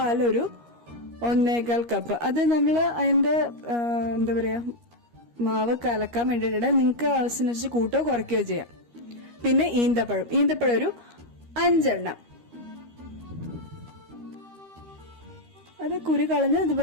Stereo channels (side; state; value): left; late; 13 ms